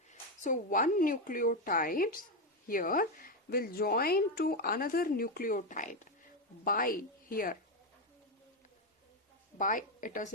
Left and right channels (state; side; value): normal; both; correlation 0.08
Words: So one nucleotide here will join to another nucleotide by it is